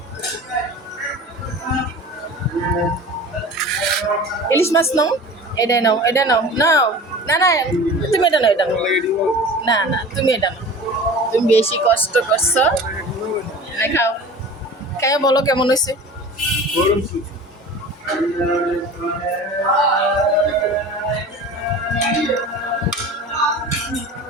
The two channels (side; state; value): both; normal; correlation 0.38